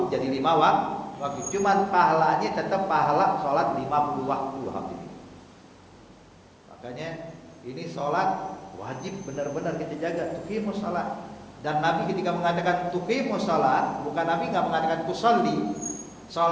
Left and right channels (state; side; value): identical; both; correlation 1.00